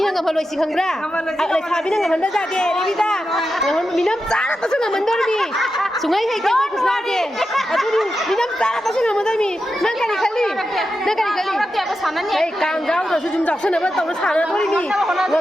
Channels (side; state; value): both; normal; correlation 0.89